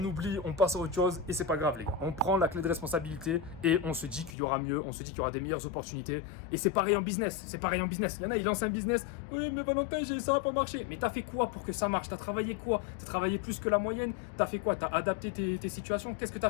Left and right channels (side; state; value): right; drops out; at 4.4 s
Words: oublie, on passe à autre chose et c'est pas grave, les gars. On prend la clé de responsabilité et on se dit qu'il y aura mieux, on se dit qu'il y aura des meilleures opportunités. Et c'est pareil en business, c'est pareil en business. Il y en a, ils lancent un business. Oui, mais Valentin, ça va pas marcher. Mais t'as fait quoi pour que ça marche? T'as travaillé quoi? T'as travaillé plus que la moyenne? T'as fait quoi? T'as adapté tes situations? Qu'est-ce que t'as